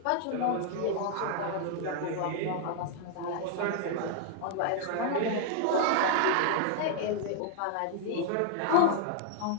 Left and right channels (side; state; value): both; different; correlation 0.00